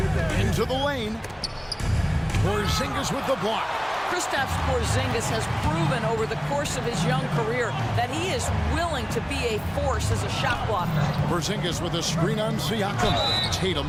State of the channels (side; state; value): both; identical; correlation 1.00